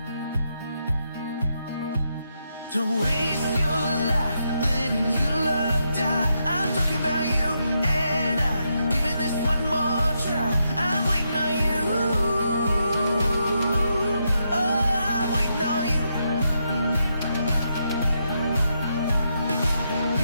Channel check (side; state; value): both; inverted; correlation -0.81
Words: Don't waste your life letting your love die. I'm talking about you and I, giving this one more try. I'm waiting on you. Oh, I'm waiting on you.